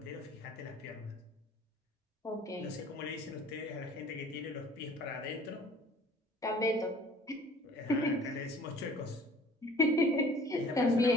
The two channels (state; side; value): normal; both; correlation 0.50